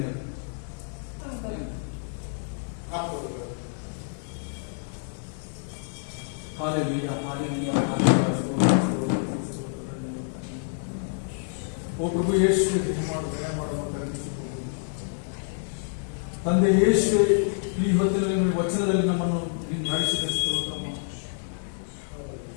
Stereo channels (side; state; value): right; silent; 60 dB below the other